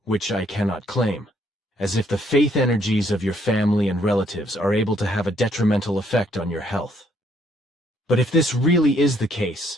which I cannot claim, as if the faith energies of your family and relatives are able to have a detrimental effect on your health. But if this really is the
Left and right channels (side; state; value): both; normal; correlation 0.68